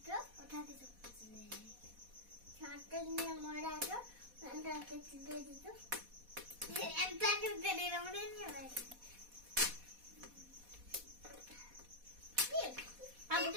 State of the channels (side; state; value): left; late; 4.1 ms